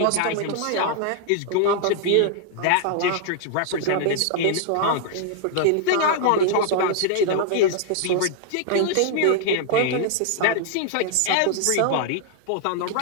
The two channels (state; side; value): different; both; correlation -0.01